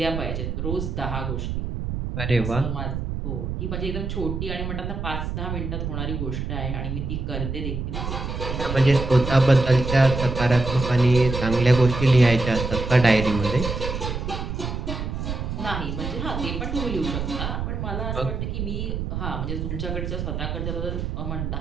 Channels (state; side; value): noise; right; rumble, 4 dB below the sound